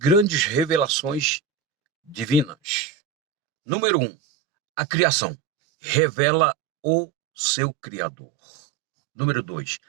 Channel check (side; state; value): left; drops out; at 2.9 s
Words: revelações divinas. Número 1, a criação revela o seu Criador. Número 2,